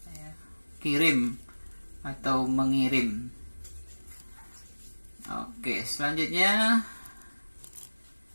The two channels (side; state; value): both; inverted; correlation -1.00